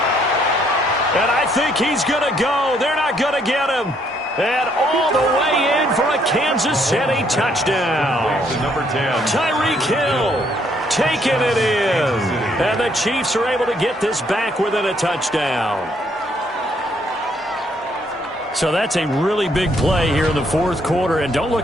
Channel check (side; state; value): both; normal; correlation 0.69